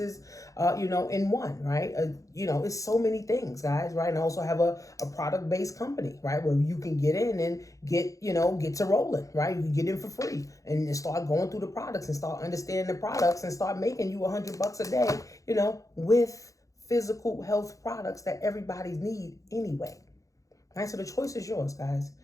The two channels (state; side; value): late; right; 0.16 ms